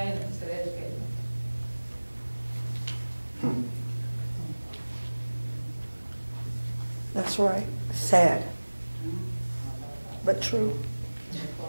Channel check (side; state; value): both; inverted; correlation -1.00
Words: instead of educating. That's right. Sad, but true.